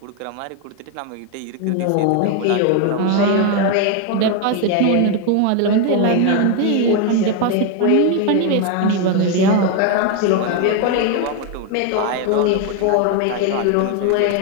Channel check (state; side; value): different; both; correlation 0.01